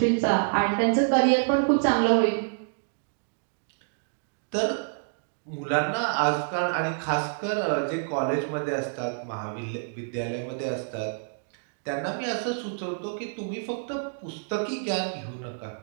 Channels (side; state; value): left; silent; digital silence